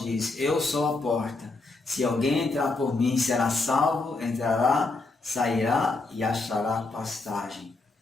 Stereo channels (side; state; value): right; quieter; 3.5 dB